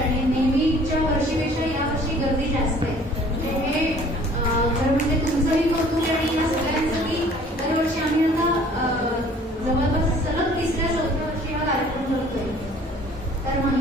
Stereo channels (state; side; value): normal; both; correlation 0.53